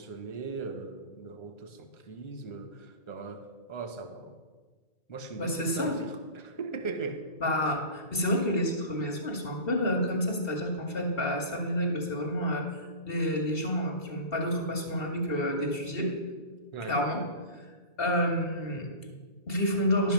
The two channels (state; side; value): late; right; 2.7 ms